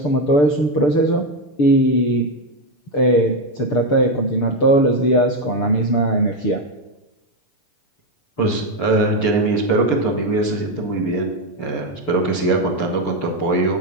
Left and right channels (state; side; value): late; right; 6.8 ms